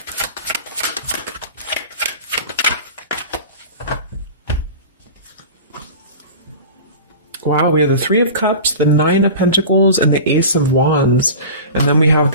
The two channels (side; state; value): both; inverted; correlation -0.34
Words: Wow, we have the Three of Cups, the Nine of Pentacles, and the Ace of Wands. And then we have